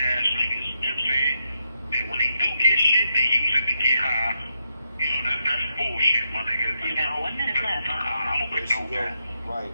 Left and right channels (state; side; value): inverted; both; correlation -0.82